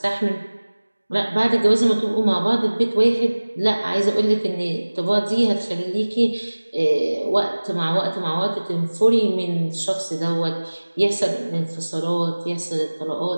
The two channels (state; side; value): inverted; both; correlation -1.00